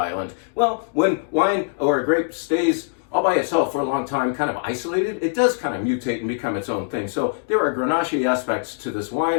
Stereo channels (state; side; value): silent; right; digital silence